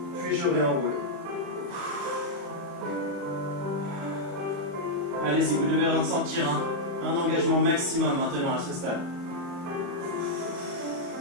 Puis je réenroule. Allez-y, vous devez ressentir un engagement maximum maintenant à ce stade.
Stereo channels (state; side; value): late; left; 35 ms